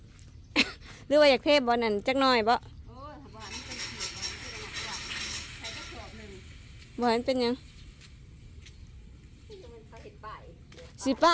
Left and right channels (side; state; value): both; identical; correlation 1.00